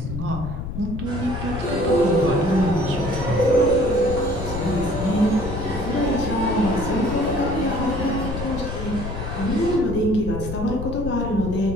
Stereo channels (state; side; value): noise; left; rumble, 6 dB below the sound